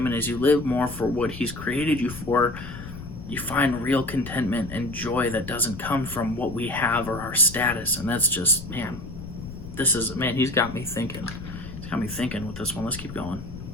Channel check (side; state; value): left; noise; rumble, 12 dB below the sound